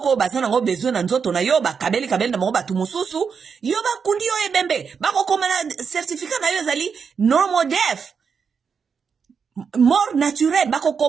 bazana ngo besoin na nzoto na yo ba kabeli na mo batu mususu yo ba kundi yo ebembe ba ko koma na certificat na yo zali normal def Mort naturelle, bako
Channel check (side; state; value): left; quieter; 6.1 dB